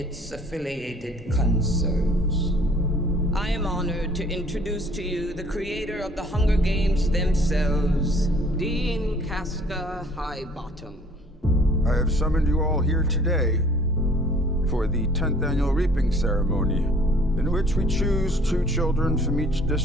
affiliated concerns. I am honored to introduce to you the creator of the Hunger Games themselves, Dean Casca Highbottom. I have summoned you all here today for the 10th annual reaping ceremony, in which we choose 2 children from each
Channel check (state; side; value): normal; both; correlation 0.55